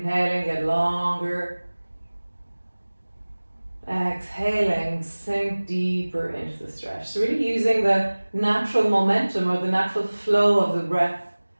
get longer. Exhaling, sink deeper into the stretch. So really using the natural momentum or the natural flow of the breath,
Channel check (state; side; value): inverted; both; correlation -1.00